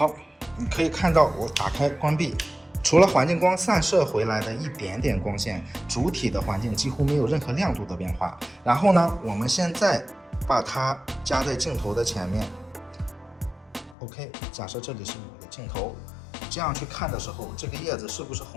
你可以看到我打开关闭，除了环境光散射回来的一点点光线，主体的环境几乎没有任何亮度的变化。然后呢，我们现在把它加在镜头的前面。OK， 假设这里是我的镜头，这样去看的时候，这个叶子是不是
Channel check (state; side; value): drops out; right; at 14.0 s